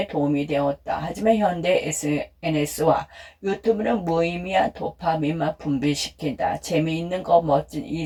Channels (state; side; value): identical; both; correlation 1.00